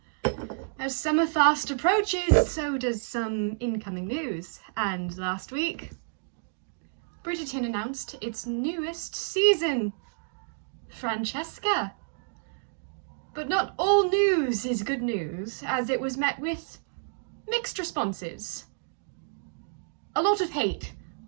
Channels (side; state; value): left; silent; digital silence